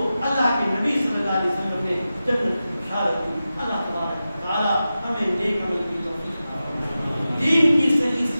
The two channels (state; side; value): inverted; both; correlation -0.93